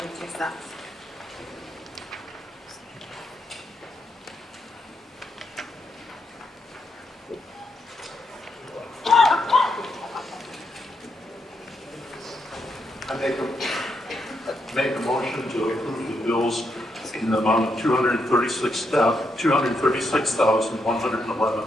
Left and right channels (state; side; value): normal; both; correlation 0.80